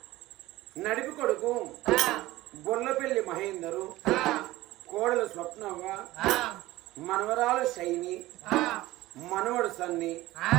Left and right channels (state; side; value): quieter; left; 17.5 dB